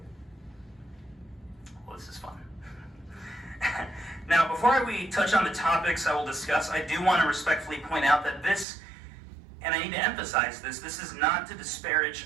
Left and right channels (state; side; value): drops out; left; at 8.7 s